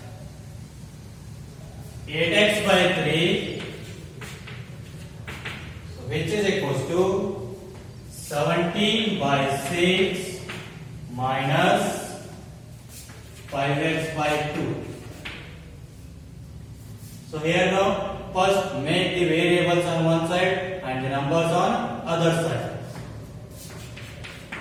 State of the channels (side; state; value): both; identical; correlation 1.00